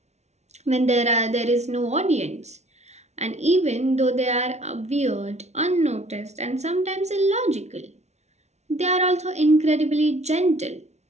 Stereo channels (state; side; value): late; left; 0.32 ms